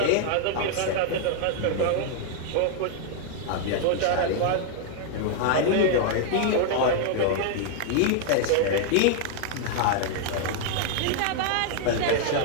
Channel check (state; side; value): different; both; correlation 0.00